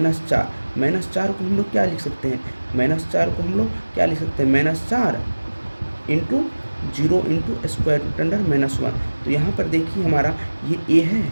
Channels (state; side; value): inverted; both; correlation -1.00